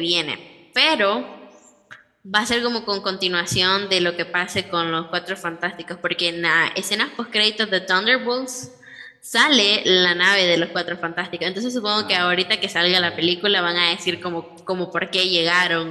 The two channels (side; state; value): both; identical; correlation 1.00